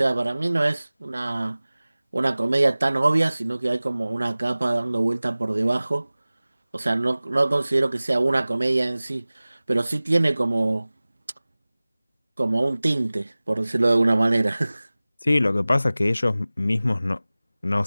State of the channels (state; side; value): inverted; both; correlation -0.98